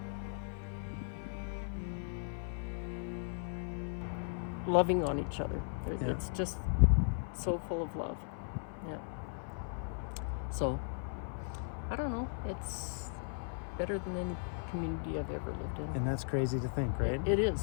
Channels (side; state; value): right; silent; 53 dB below the other